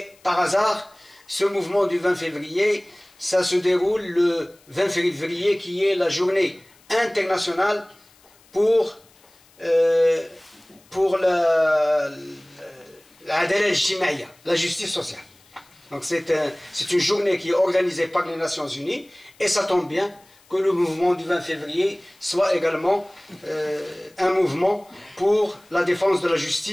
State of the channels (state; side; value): noise; left; hiss, 30 dB below the sound